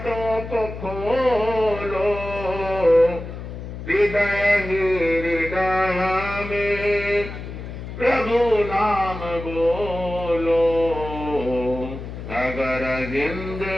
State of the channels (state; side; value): noise; left; hum, 9 dB below the sound